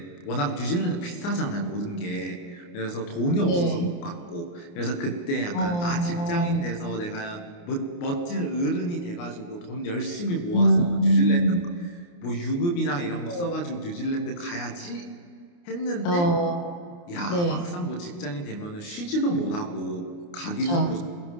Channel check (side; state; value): right; late; 29 ms